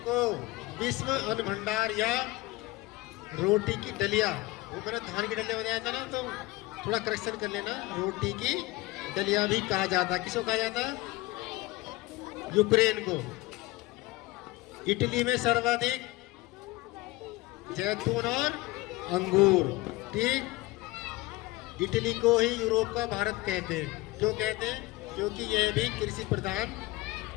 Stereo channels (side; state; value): right; quieter; 19.9 dB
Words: को विश्व अन्न भंडार या रोटी की डलिया, वो मैंने धान की डलिया बताया था ना, तो थोड़ा करेक्शन कर लेना। रोटी की डलिया भी कहा जाता है। किसको कहा जाता है? यूक्रेन को। इटली में सर्वाधिक जैतून और अंगूर, ठीक। इटली को ही यूरोप का भारत कहते हैं। क्यों कहते हैं? क्योंकि यह भी कृषि प्रधान